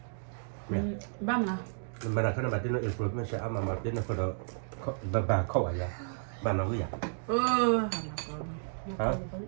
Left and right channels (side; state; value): left; silent; digital silence